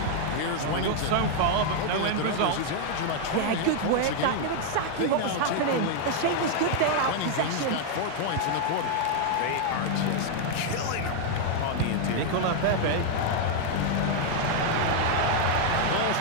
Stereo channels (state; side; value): different; both; correlation 0.00